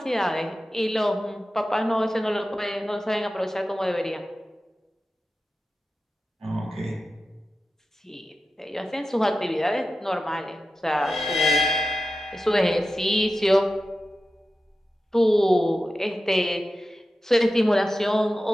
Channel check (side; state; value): both; normal; correlation 0.93